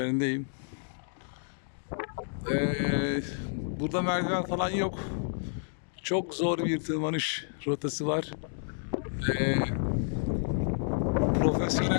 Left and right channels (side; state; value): right; silent; digital silence